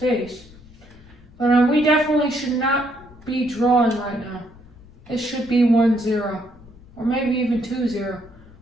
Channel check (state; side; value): noise; left; rumble, 23 dB below the sound